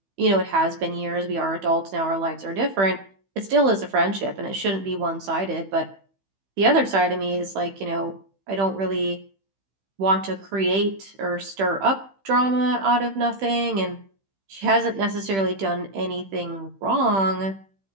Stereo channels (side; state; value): left; late; 15 ms